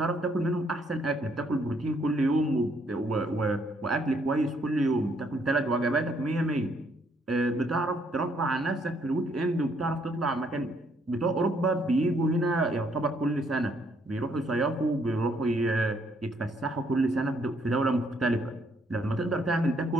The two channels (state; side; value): normal; both; correlation 0.69